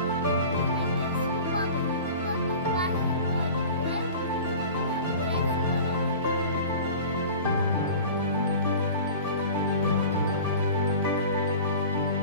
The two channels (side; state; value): both; inverted; correlation -0.39